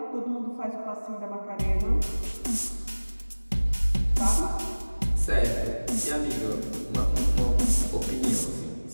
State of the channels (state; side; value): inverted; both; correlation -1.00